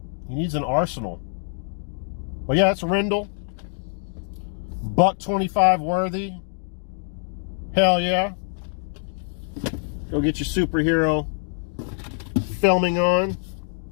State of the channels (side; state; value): right; silent; digital silence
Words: needs an arsenal. But yeah, it's Rendell. $1.25 worthy. Hell yeah. Go get your superhero filming on.